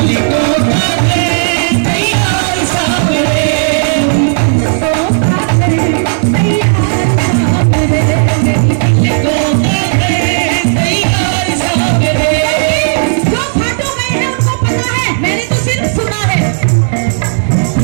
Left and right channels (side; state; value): left; silent; digital silence